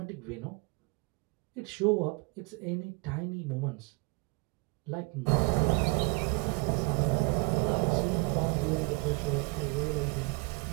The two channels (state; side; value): quieter; left; 29.4 dB